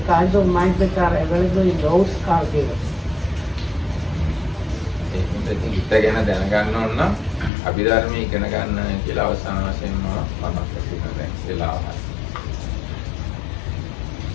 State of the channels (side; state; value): right; drops out; at 7.5 s